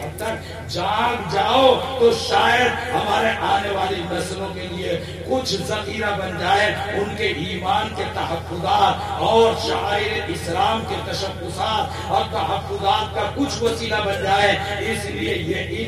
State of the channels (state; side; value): identical; both; correlation 1.00